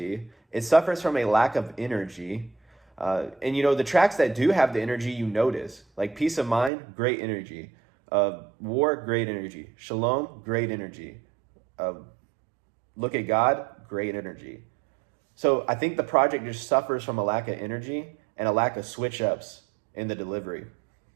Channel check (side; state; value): left; drops out; at 6.7 s